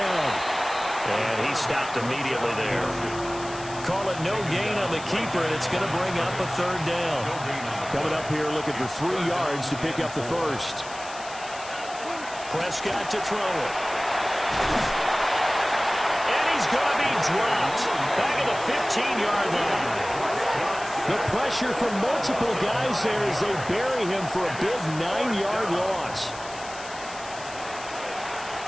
And he stopped immediately there. Call it no gain on the keeper, and it's going to bring up a third down. Coming up here looking for 3 yards to pick up the first. Prescott to throw it. And he's going to be dropped. Back at the 15-yard line. The pressure from multiple guys there as they bury him for a big 9-yard loss.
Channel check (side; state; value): left; noise; hiss, 15 dB below the sound